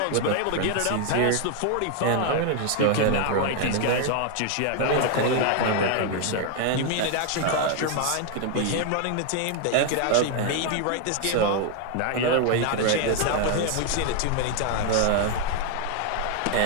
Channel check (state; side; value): different; both; correlation 0.00